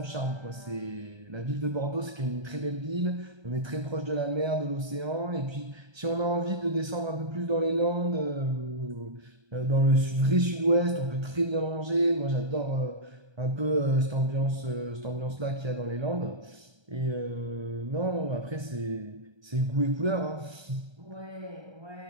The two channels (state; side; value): late; left; 1.3 ms